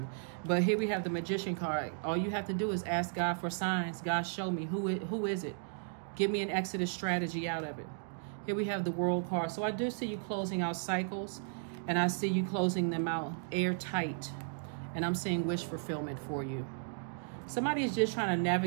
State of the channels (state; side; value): silent; left; digital silence